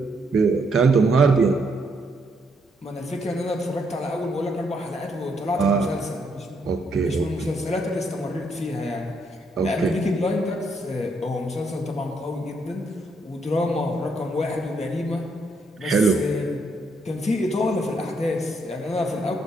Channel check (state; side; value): normal; both; correlation 0.74